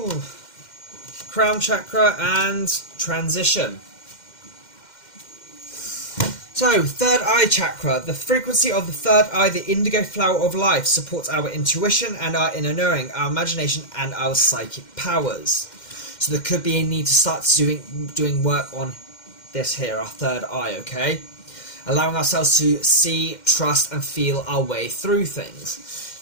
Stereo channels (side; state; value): right; late; 2.1 ms